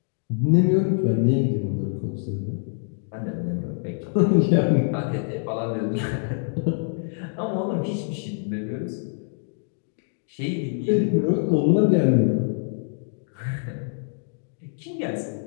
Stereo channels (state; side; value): silent; right; digital silence